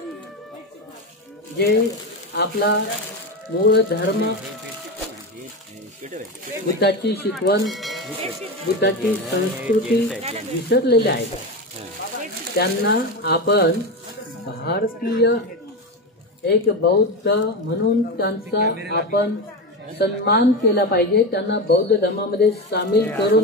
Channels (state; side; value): normal; both; correlation 0.18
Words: जे आपला मूळ धर्म, बुद्धाची शिकवण, बुद्धाची संस्कृती विसरलेले आहेत. त्यांना आपण भारतीय एक बौद्ध म्हणून त्यांचा आपण सन्मान केला पाहिजे, त्यांना बौद्ध धर्मामध्ये सामील